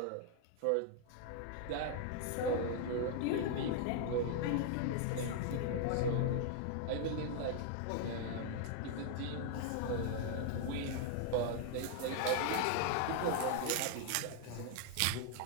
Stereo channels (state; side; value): different; both; correlation 0.00